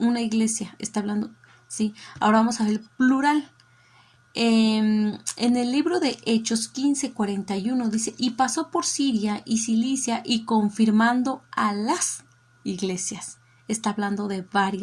iglesia, está hablando, ¿sí? Ahora vamos a ver el plural. En el libro de Hechos 15:41 dice, y pasó por Siria y Cilicia y confirmando a las iglesias. Está hablando de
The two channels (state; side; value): identical; both; correlation 1.00